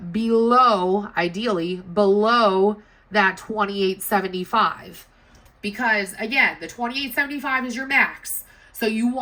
below, ideally, below that $28.75. because again, the $28.75 is your max. So you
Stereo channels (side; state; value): both; identical; correlation 1.00